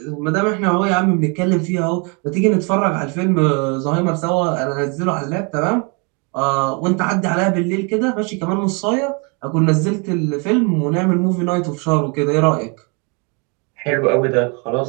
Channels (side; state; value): left; quieter; 33.4 dB